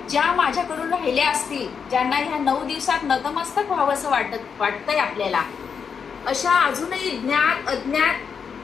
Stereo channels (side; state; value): right; quieter; 6.4 dB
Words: ज्या माझ्याकडून राहिल्या असतील, ज्यांना ह्या 9 दिवसात नतमस्तक व्हावं असं वाटतंय आपल्याला, अशा अजूनही ज्ञात